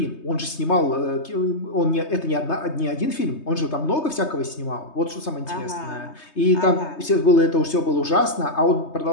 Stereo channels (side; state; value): right; late; 3.3 ms